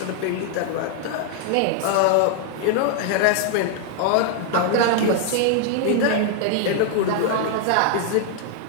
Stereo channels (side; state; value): both; different; correlation 0.00